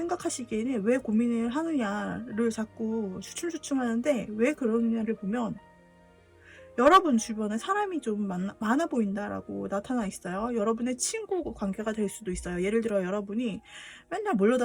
왜 고민을 하느냐를 자꾸 주춤주춤 하는데, 왜 그러느냐를 보면 여러분 주변에 사람이 좀 많아 보인다라고 나타나 있어요. 여러분의 친구 관계가 될 수도 있어요. 예를 들어 여러분이 맨날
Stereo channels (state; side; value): identical; both; correlation 1.00